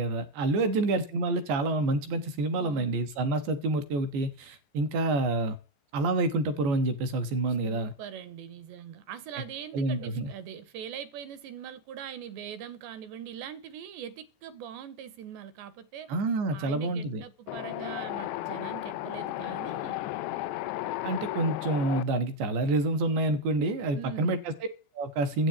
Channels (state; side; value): late; left; 14 ms